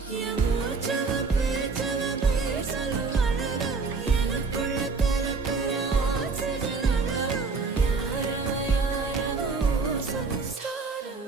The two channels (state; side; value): quieter; left; 4.4 dB